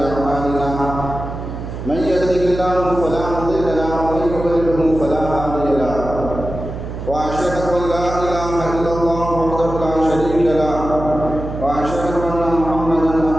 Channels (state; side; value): noise; right; hum, 8 dB below the sound